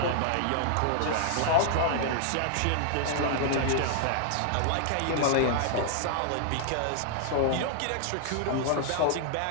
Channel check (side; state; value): both; different; correlation 0.00